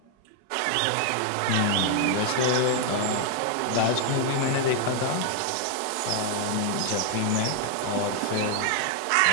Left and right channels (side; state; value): both; different; correlation 0.00